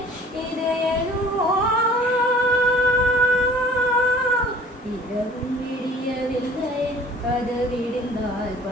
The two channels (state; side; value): normal; both; correlation 0.50